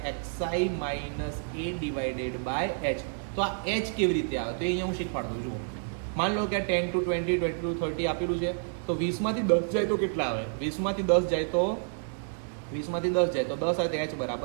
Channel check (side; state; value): left; silent; digital silence